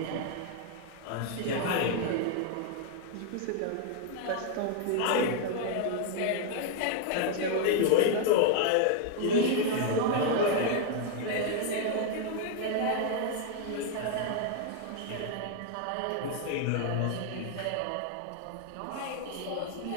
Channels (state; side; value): different; both; correlation 0.00